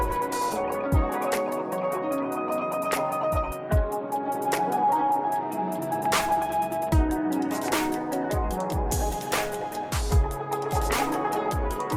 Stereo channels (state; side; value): identical; both; correlation 1.00